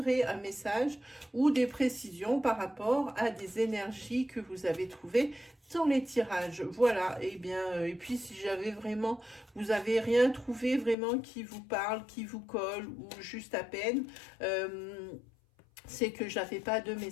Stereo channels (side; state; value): right; drops out; at 11.0 s